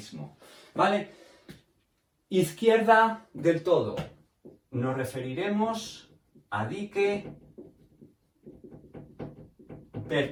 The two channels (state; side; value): identical; both; correlation 1.00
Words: ¿vale? Izquierda del todo. Nos referiremos a dique